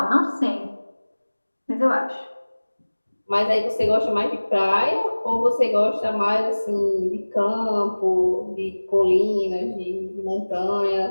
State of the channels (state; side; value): inverted; both; correlation -1.00